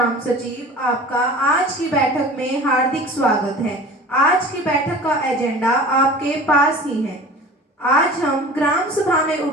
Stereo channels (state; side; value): normal; both; correlation 0.40